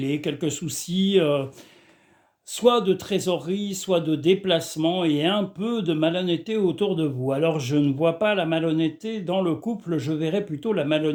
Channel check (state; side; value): identical; both; correlation 1.00